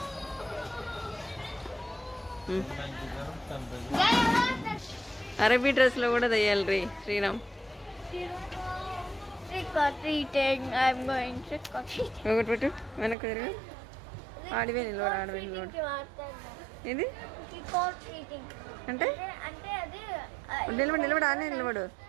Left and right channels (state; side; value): drops out; left; at 13.2 s